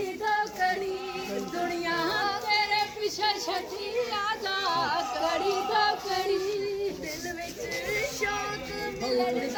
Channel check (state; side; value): identical; both; correlation 1.00